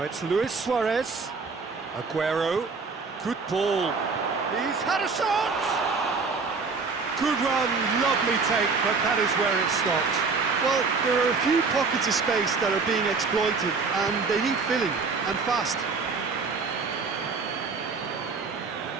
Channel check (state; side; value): quieter; left; 4.6 dB